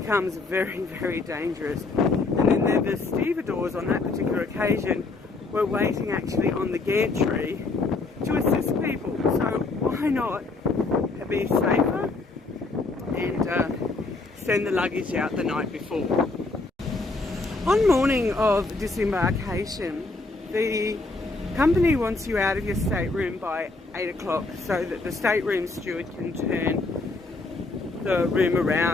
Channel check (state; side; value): quieter; right; 3.5 dB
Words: very, very dangerous. And then the stevedores on that particular occasion we're waiting actually on the gantry to assist people. So why not be safer and send the luggage out the night before. On morning of disembarkation, the company wants you out of your stateroom by 8 o'clock so that the stateroom steward can turn the room